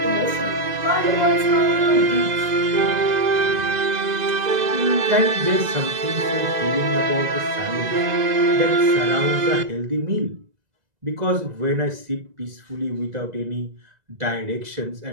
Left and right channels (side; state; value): left; late; 2.0 ms